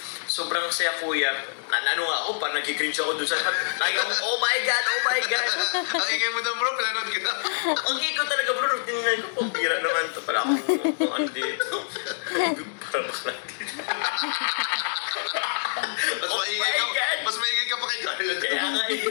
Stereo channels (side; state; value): right; silent; digital silence